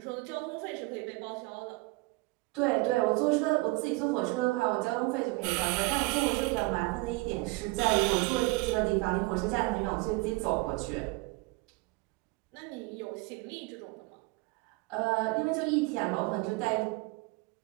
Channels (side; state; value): left; quieter; 24.2 dB